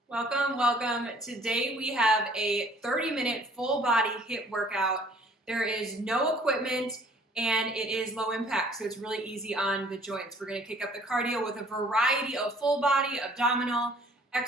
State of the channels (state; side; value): normal; both; correlation 0.56